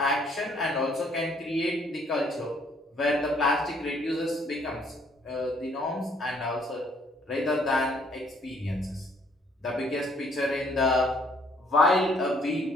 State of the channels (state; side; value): normal; both; correlation 0.64